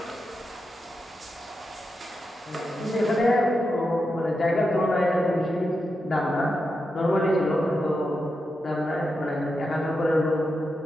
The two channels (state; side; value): normal; both; correlation 0.87